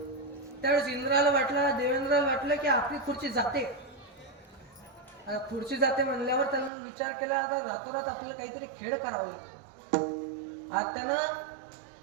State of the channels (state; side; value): drops out; left; at 6.7 s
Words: त्यावेळेस इंद्राला वाटलं, देवेंद्राला वाटलं की आपली खुर्ची जाते. आता खुर्ची जाते म्हणल्यावर त्यानं विचार केला आता रातोरात आपल्याला काहीतरी खेळ करावा लागेल. आता त्यानं